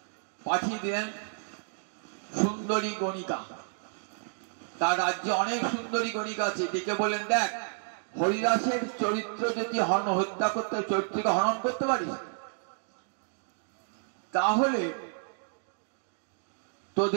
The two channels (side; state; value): left; silent; digital silence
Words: পাঠিয়ে দিলেন সুন্দরী গণিকা। তার রাজ্যে অনেক সুন্দরী গণিকা আছে, ডেকে বলেন, দেখ হরিদাসের চরিত্র যদি হত্যা করতে, চরিত্রকে হনন করতে পারিস, তাহলে